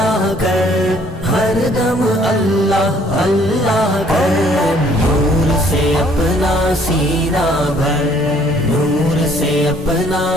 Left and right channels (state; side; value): normal; both; correlation 0.61